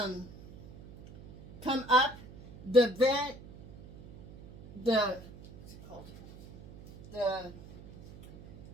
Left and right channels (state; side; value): noise; right; hum, 18 dB below the sound